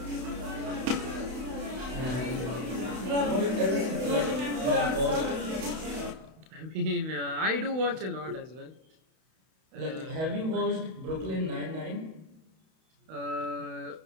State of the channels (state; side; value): late; left; 31 ms